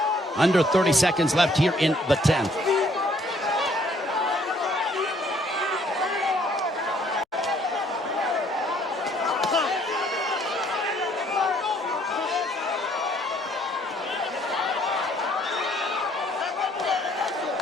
Under 30 seconds left here in the 10th.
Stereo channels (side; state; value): both; normal; correlation 0.64